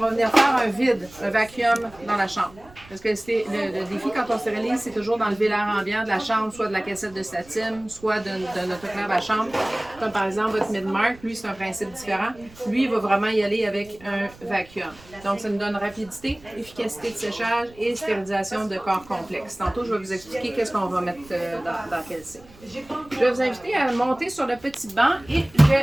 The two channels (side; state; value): right; noise; rumble, 23 dB below the sound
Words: venir faire un vide, un vacuum dans la chambre. Parce que le défi quand on stérilise, c'est toujours d'enlever l'air ambiant de la chambre, soit de la cassette de statim, soit de notre autoclave à chambre. Comme par exemple votre Midmark, lui c'est un principe différent. Lui, il va vraiment y aller avec un vacuum. Donc ça nous donne rapidité, efficacité de séchage et stérilisation de corps complexes. Tantôt, je vais vous expliquer qu'est-ce qu'on va mettre dans quel cycle. Je vais vous inviter à monter sur le petit banc et je